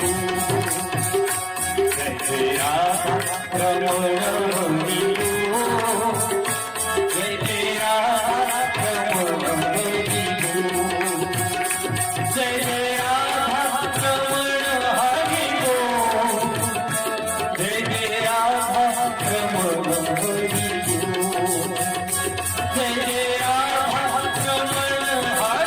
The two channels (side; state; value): both; identical; correlation 1.00